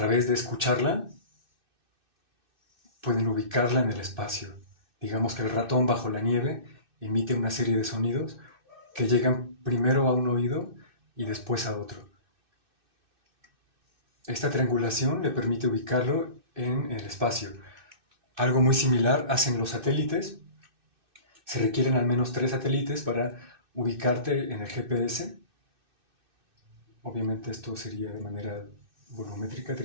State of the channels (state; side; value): late; left; 2.6 ms